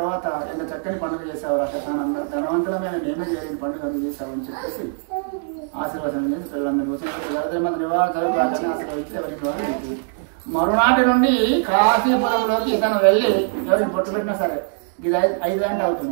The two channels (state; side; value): silent; left; digital silence